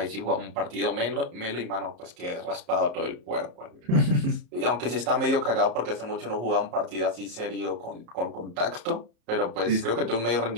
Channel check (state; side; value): late; left; 33 ms